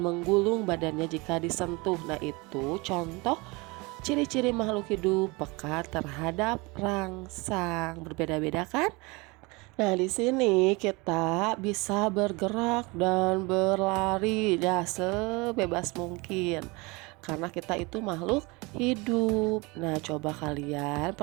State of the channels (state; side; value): quieter; left; 25.9 dB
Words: menggulung badannya jika disentuh. Nah, itu contoh ciri-ciri makhluk hidup peka terhadap rangsang. Berbeda-beda kan? Nah, di sini kita bisa bergerak dan berlari ya sebebas mungkin. Karena kita itu makhluk hidup. Nah, coba kalian